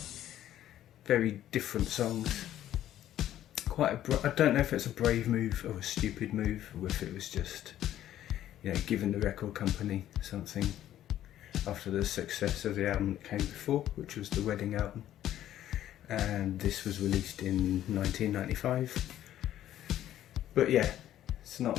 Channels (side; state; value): right; quieter; 12.3 dB